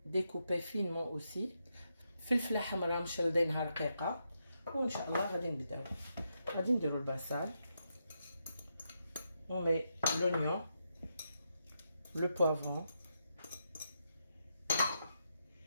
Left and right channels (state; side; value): inverted; both; correlation -0.83